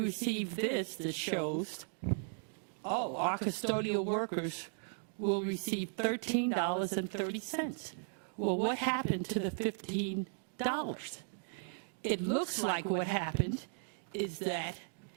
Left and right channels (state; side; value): silent; left; digital silence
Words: this that shows, our custodial workers will receive $13.30. Well, what happened to the $15? It looks like what happened is that